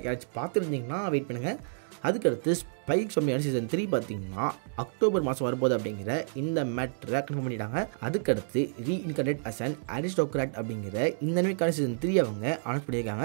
யாராச்சும் பார்த்துருந்தீங்கன்னா வெயிட் பண்ணுங்கள். அதுக்கடுத்து ஸ்பைக் சொம்மியான சீசன் 3 பார்த்தீங்கன்னா அக்டோபர் மாதம் வரப்போகுது அப்படிங்கிற இந்த மேட்டரை கன்ஃபார்ம் பண்ணிட்டாங்க. அதுக்கடுத்து ரீஇன்கார்னேட் அஸ் அன் அரிஸ்டோக்ராட் அப்படிங்கிற இந்த அனிமேக்கான சீசன் 3 அவங்க அனௌன்ஸ்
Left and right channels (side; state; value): left; silent; digital silence